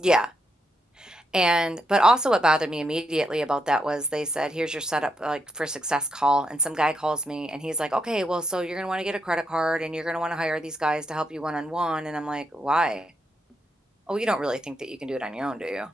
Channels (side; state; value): both; normal; correlation 0.79